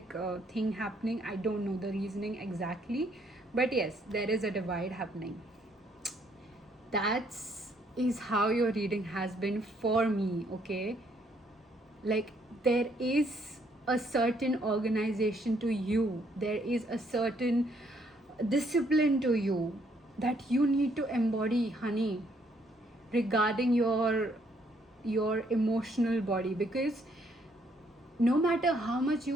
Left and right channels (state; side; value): normal; both; correlation 0.69